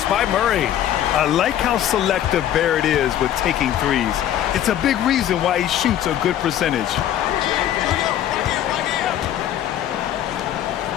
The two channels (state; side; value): quieter; right; 11.4 dB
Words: by Murray. I like how selective Barrett is with taking threes. It's a big reason why he shoots a good percentage.